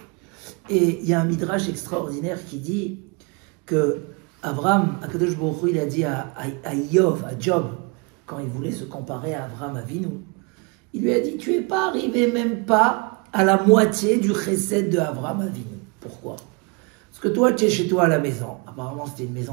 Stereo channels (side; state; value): left; quieter; 30.4 dB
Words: Et il y a un midrash extraordinaire qui dit que Abraham, Akadosh Baruch Hu, il a dit à Job, quand il voulait se comparer à Abraham Avinu, il lui a dit, tu n'es pas arrivé même pas à la moitié du chesed de Abraham Avinu. Pourquoi? Parce que toi, tu es chez toi à la maison. Apparemment, c'était une